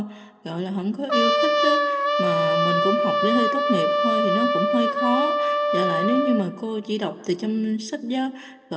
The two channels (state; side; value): identical; both; correlation 1.00